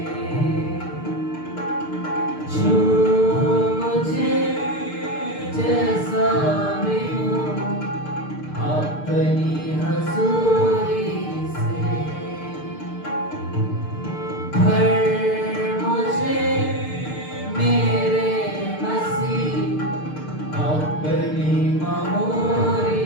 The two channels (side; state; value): right; late; 6.7 ms